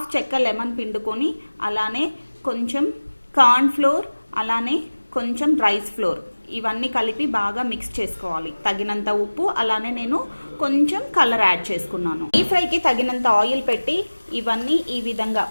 చెక్క లెమన్ పిండుకొని, అలానే కొంచెం కార్న్ ఫ్లోర్, అలానే కొంచెం రైస్ ఫ్లోర్, ఇవన్నీ కలిపి బాగా మిక్స్ చేసుకోవాలి. తగినంత ఉప్పు, అలానే నేను కొంచెం కలర్ యాడ్ చేసుకున్నాను. ఈ ఫ్రైకి తగినంత ఆయిల్ పెట్టి ఇవన్నీ ఈ విధంగా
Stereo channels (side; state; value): both; inverted; correlation -1.00